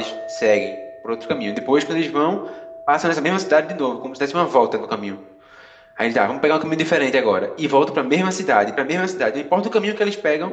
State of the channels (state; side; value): identical; both; correlation 1.00